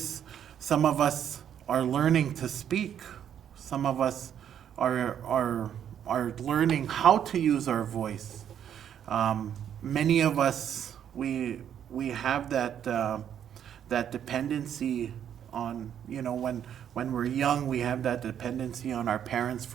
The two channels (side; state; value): left; quieter; 9.4 dB